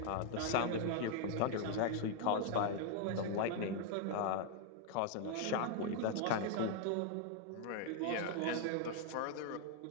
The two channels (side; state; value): both; different; correlation 0.00